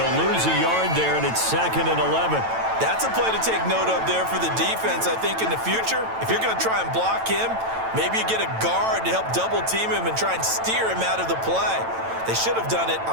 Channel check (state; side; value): late; left; 9.0 ms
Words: lose a yard there, and it's 2nd and 11. That's a play to take note of there for the defense. I think in the future, if you're going to try and block him, maybe you get a guard to help double team him and try and steer him out of the play. They should have done it